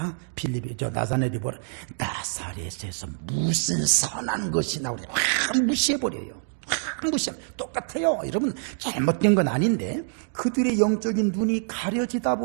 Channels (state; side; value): silent; left; digital silence